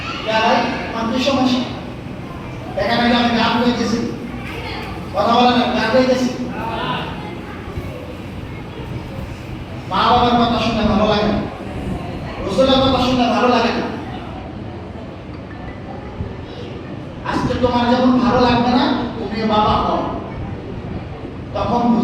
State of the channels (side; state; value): both; identical; correlation 1.00